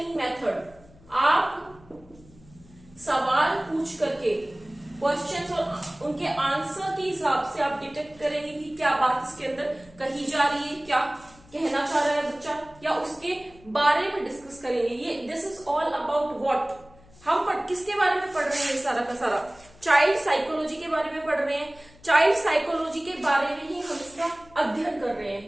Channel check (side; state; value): left; noise; hum, 25 dB below the sound